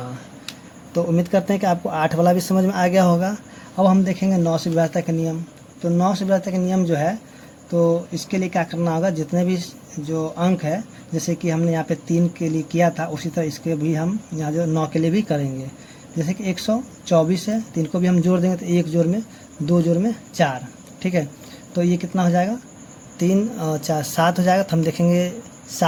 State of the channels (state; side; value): identical; both; correlation 1.00